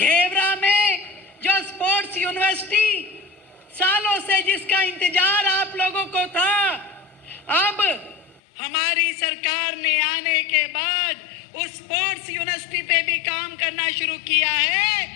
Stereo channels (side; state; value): right; drops out; at 8.4 s